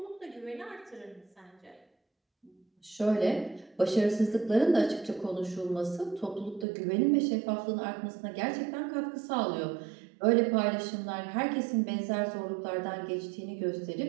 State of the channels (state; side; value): drops out; left; at 6.7 s